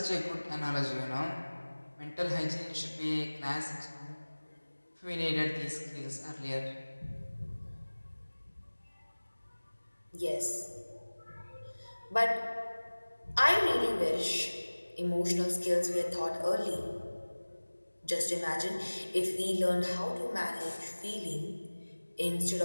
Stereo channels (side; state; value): both; inverted; correlation -1.00